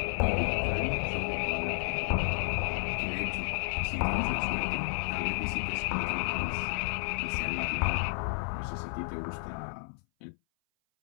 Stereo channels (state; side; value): silent; right; 57 dB below the other